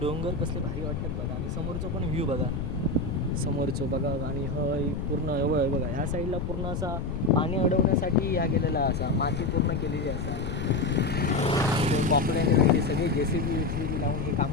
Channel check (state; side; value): noise; left; rumble, 4 dB below the sound